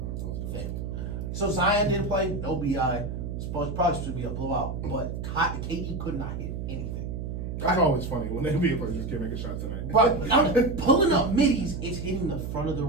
So Zion didn't play, no BI. Probably supposed to be a blowout, but KD could not hit anything. That's always funny when the NBA players just can't make a shot tonight. But I'm pulling up middies, it's hitting the front of the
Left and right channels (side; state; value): right; noise; hum, 5 dB below the sound